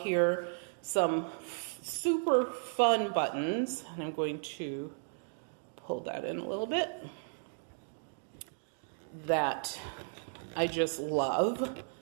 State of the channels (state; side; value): silent; left; digital silence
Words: Some super fun buttons, and I'm going to pull that in a little bit, that I just love